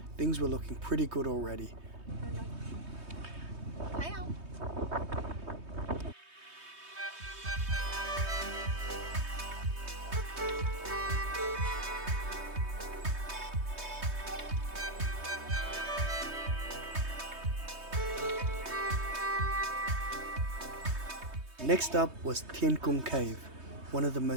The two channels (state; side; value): late; left; 3.2 ms